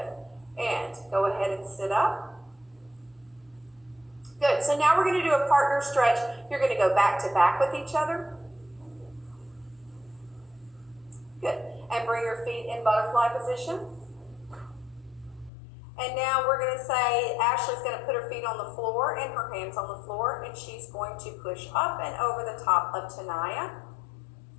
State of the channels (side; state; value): right; drops out; at 15.5 s